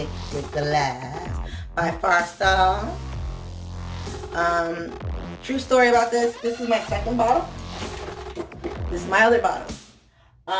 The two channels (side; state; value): both; identical; correlation 1.00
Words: glass by Farsal. True story about this. This is my second bottle. This is my other bottle.